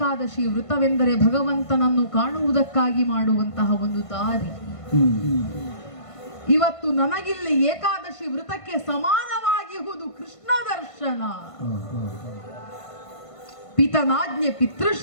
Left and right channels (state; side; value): late; right; 1.5 ms